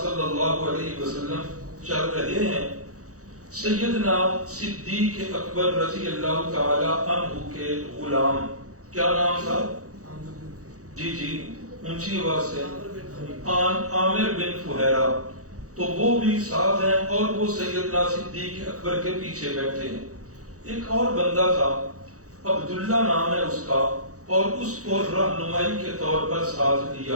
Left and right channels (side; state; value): left; late; 0.65 ms